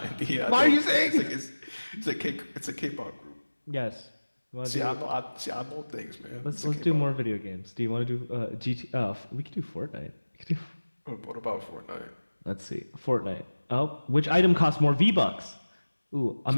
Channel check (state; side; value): inverted; both; correlation -1.00